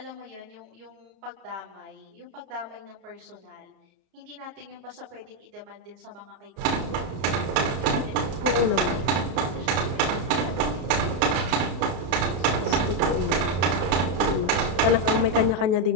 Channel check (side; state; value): left; late; 33 ms